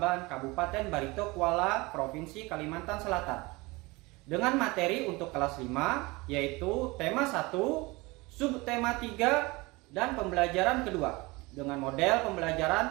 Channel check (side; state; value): left; quieter; 23.7 dB